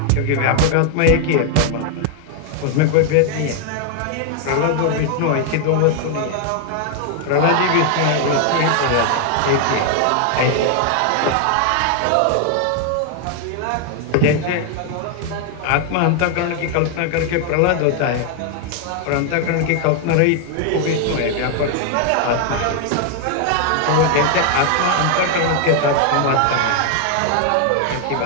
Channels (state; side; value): different; both; correlation 0.00